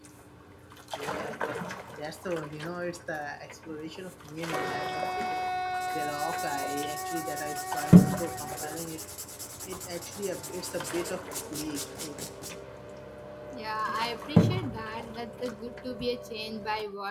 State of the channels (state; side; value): identical; both; correlation 1.00